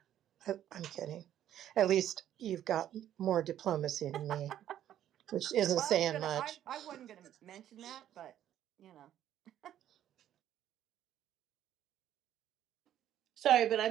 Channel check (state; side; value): quieter; left; 11.4 dB